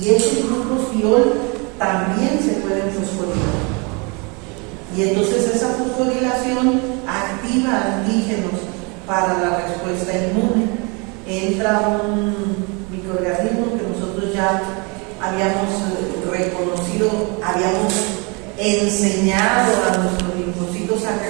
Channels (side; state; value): left; quieter; 30.9 dB